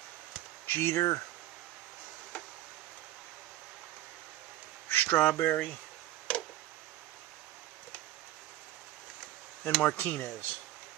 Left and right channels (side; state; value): left; quieter; 14.4 dB